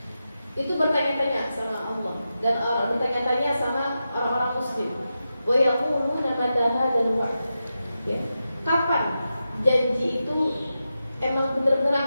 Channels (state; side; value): inverted; both; correlation -0.90